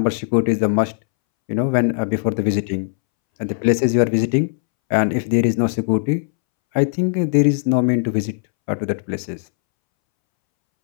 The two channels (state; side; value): silent; right; 65 dB below the other